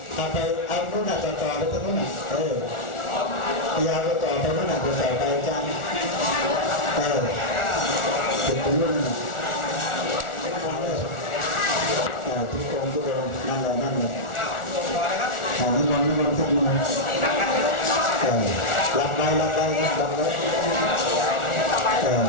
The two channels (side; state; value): right; late; 1.4 ms